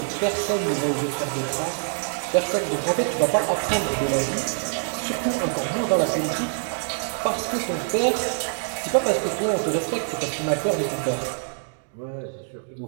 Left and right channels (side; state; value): left; silent; 62 dB below the other